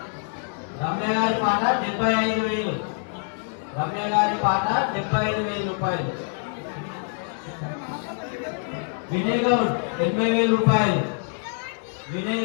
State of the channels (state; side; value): silent; right; 56 dB below the other